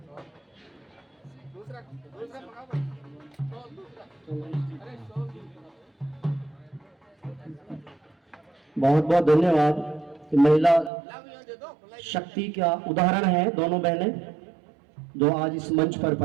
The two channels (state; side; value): drops out; left; at 10.9 s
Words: बहुत बहुत धन्यवाद कि महिला शक्ति का उदाहरण है दोनों बहनें जो आज इस मंच पर